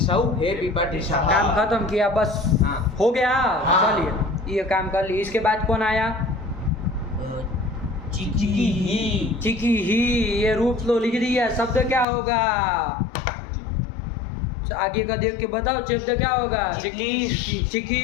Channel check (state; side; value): drops out; right; at 12.1 s